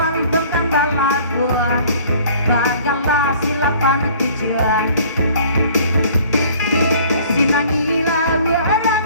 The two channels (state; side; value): inverted; both; correlation -0.52